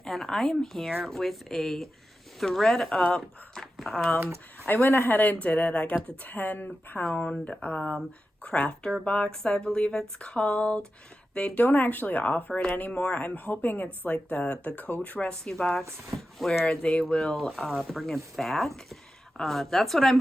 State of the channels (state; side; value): normal; both; correlation 0.92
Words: and I am here with a ThredUp. I went ahead and did it. I got the 10-pound crafter box, I believe it's called. They don't actually offer it anymore. I'm hoping it's like the Coach Rescue box where they will bring it back. That's what I'm